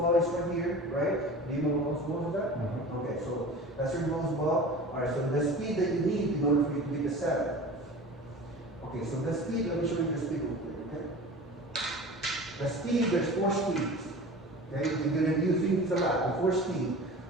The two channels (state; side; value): normal; both; correlation 0.37